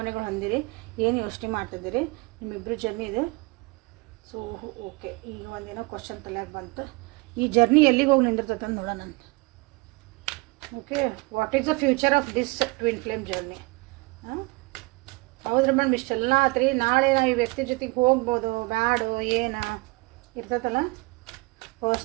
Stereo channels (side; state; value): left; quieter; 25.9 dB